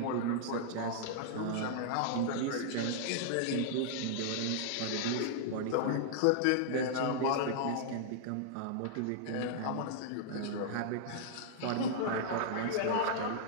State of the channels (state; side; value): different; both; correlation -0.01